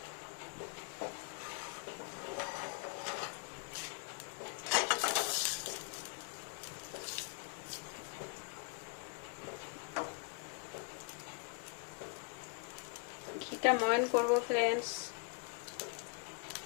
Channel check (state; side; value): quieter; right; 36.2 dB